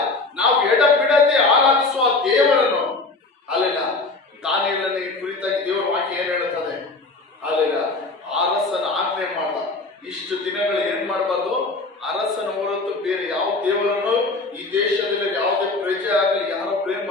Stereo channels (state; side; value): quieter; right; 3.5 dB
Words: ನಾವು ಎಡ ಬಿಡದೆ ಆರಾಧಿಸುವ ದೇವರನ್ನು ಅಲ್ಲೆಲ್ಲ ದಾನಿಯೇಲನ ಕುರಿತಾಗಿ ದೇವರ ವಾಕ್ಯ ಏನ್ ಹೇಳುತ್ತದೆ? ಅಲ್ಲೆಲ್ಲ ಅರಸನ ಆಜ್ಞೆ ಮಾಡ್ದ. ಇಷ್ಟು ದಿನಗಳು ಏನ್ ಮಾಡಬಾರ್ದು? ಅರಸನ ಹೊರತು ಬೇರೆ ಯಾವ ದೇವರನ್ನು ಈ ದೇಶದಲ್ಲಿ ಯಾವುದೇ ಪ್ರಜೆ ಆಗಲಿ ಯಾರೋ ಪ್ರೇಮ್